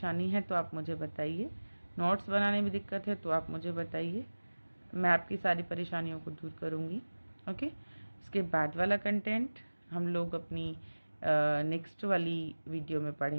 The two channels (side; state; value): both; inverted; correlation -1.00